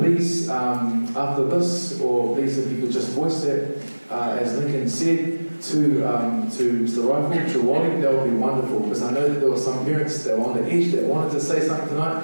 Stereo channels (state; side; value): inverted; both; correlation -1.00